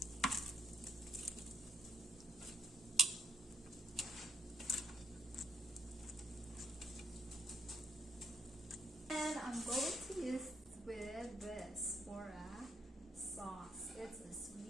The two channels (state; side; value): normal; both; correlation 0.74